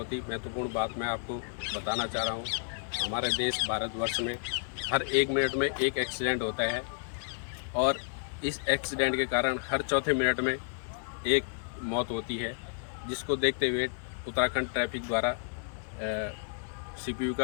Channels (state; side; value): silent; right; 57 dB below the other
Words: ही महत्वपूर्ण बात मैं आपको बताना चाह रहा हूं। हमारे देश भारतवर्ष में हर 1 मिनट में एक एक्सीडेंट होता है और इस एक्सीडेंट के कारण हर चौथे मिनट में एक मौत होती है, जिसको देखते हुए उत्तराखंड ट्रैफिक द्वारा सीपीयू